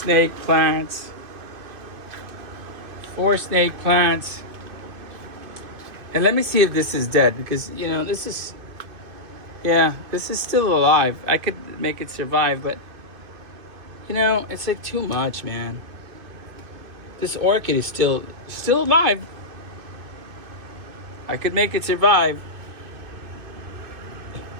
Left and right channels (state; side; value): late; left; 2.5 ms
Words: plants. 4 snake plants. And let me see if this is dead, because, you know, this is still alive. I could make it survive, but, you know, it's like too much, man. This orchid is still alive. I could make it survive.